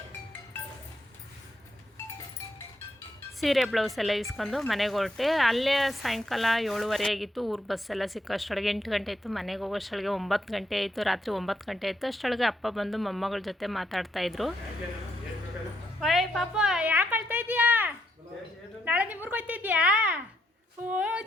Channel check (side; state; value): both; normal; correlation 0.77